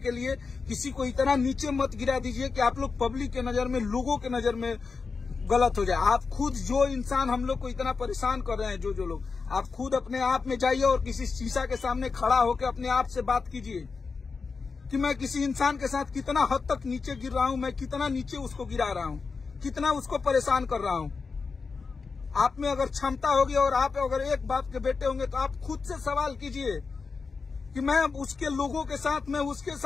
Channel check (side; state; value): right; quieter; 4.8 dB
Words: लिए, किसी को इतना नीचे मत गिरा दीजिए कि आप लोग पब्लिक के नजर में, लोगों के नजर में गलत हो जाए। आप खुद जो इंसान हम लोग को इतना परेशान कर रहे हैं, जो लोग, आप खुद अपने आप में जाइए और किसी शीशा के सामने खड़ा होकर अपने आप से बात कीजिए कि मैं किसी इंसान के साथ कितना हद तक नीचे गिर रहा हूं, मैं कितना नीचे उसको गिरा रहा हूं, कितना उसको परेशान कर रहा हूं। आप में अगर क्षमता होगी और आप अगर एक बाप के बेटे होंगे तो आप खुद से सवाल कीजिए कि मैं उसके लोगों के साथ, मैं उसके